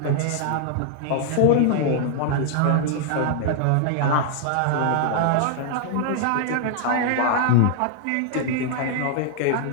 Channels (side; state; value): both; different; correlation -0.01